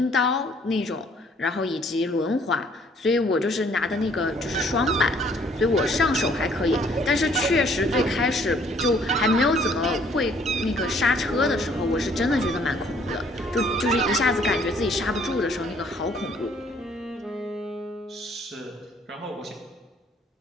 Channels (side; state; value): both; normal; correlation 0.61